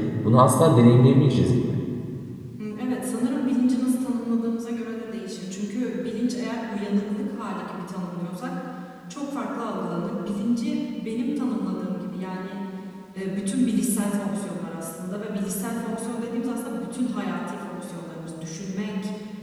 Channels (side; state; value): both; identical; correlation 1.00